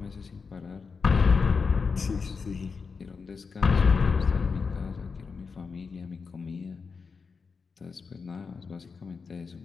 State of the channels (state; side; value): quieter; right; 5.1 dB